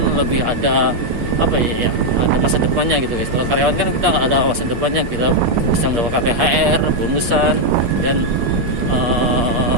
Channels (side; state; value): left; late; 8.4 ms